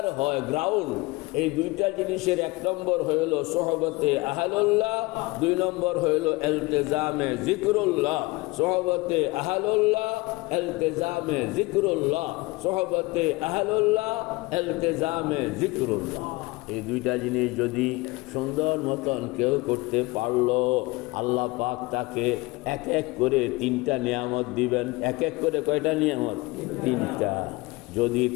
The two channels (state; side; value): quieter; right; 22.9 dB